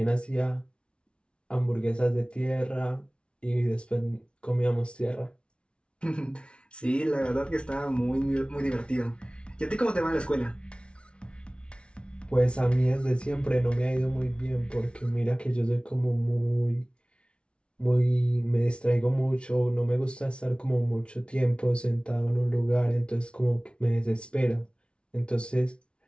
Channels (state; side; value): late; right; 0.058 ms